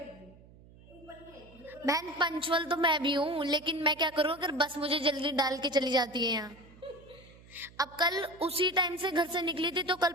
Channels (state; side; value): noise; right; hum, 23 dB below the sound